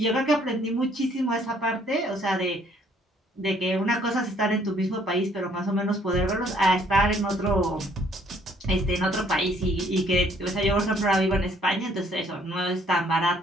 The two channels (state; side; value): normal; both; correlation 0.63